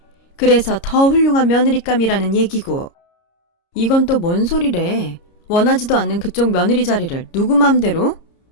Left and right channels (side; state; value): right; late; 30 ms